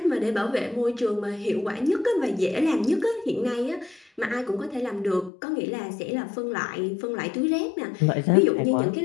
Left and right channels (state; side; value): drops out; right; at 5.3 s